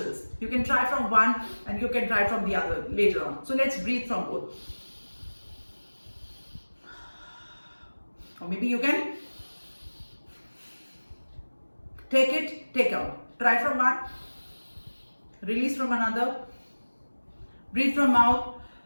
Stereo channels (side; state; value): both; inverted; correlation -1.00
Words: You can try from one and you can try from the other later on. So let's breathe from both. Or maybe you can take it, take out. Try from one, release from another. Breathe from mouth,